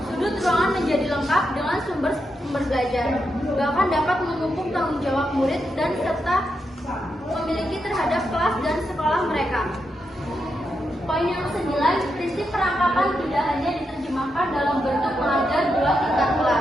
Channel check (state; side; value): normal; both; correlation 0.84